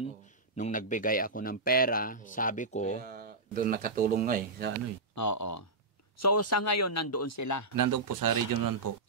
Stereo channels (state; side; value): quieter; left; 3.2 dB